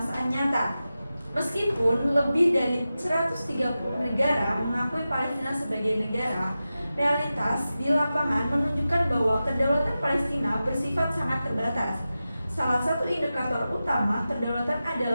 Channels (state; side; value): inverted; both; correlation -0.93